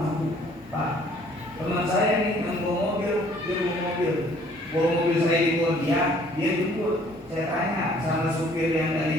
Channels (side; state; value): both; normal; correlation 0.58